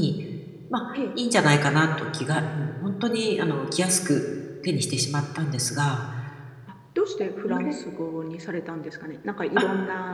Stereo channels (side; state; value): both; identical; correlation 1.00